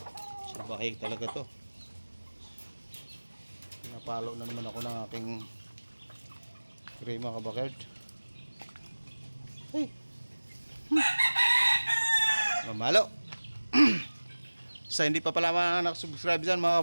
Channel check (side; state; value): both; inverted; correlation -1.00